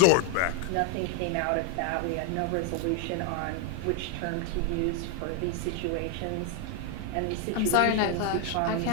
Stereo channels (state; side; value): different; both; correlation 0.01